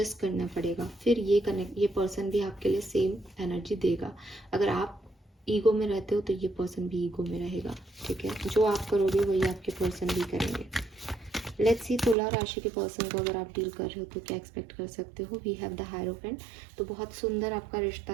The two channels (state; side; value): drops out; left; at 12.2 s